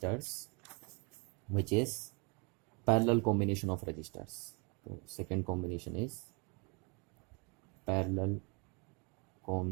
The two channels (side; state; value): left; quieter; 32.7 dB